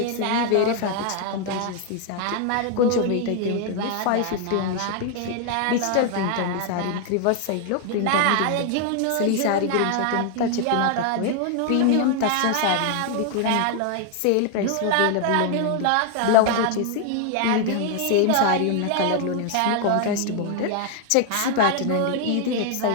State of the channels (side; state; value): both; different; correlation 0.00